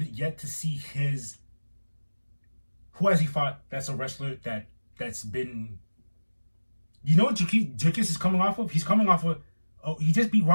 yet to see his. Who has he fought? That's a wrestler that's been. You know what Dricus is coming off of? He's coming off of. Oh, he just beat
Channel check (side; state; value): both; inverted; correlation -1.00